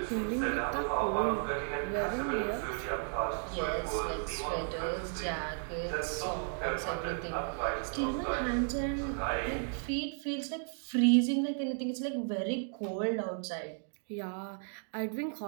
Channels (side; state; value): left; silent; 55 dB below the other